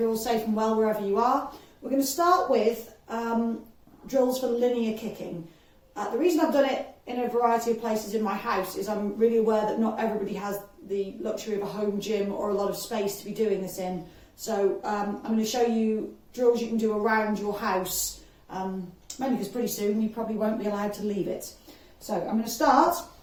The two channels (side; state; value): both; identical; correlation 1.00